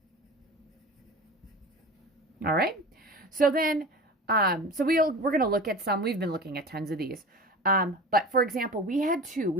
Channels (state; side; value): normal; both; correlation 0.34